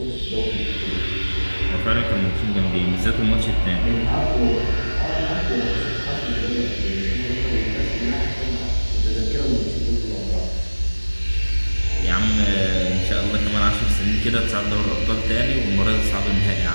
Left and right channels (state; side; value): inverted; both; correlation -1.00